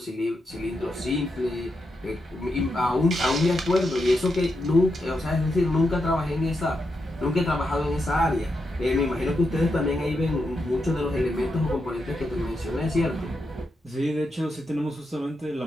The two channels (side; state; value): both; normal; correlation 0.84